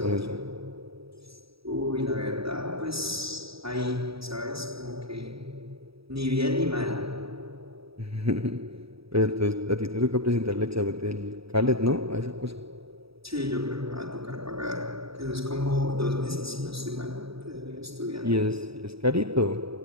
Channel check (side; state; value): left; late; 0.77 ms